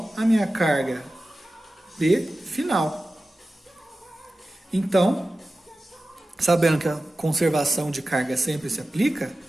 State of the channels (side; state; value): both; normal; correlation 0.95